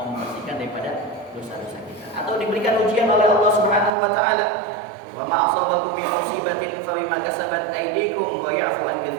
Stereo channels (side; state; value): left; drops out; at 3.9 s